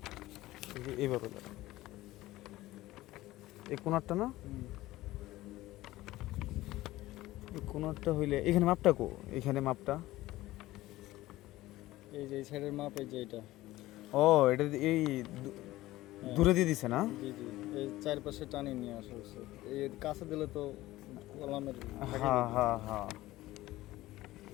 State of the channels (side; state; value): right; quieter; 17.0 dB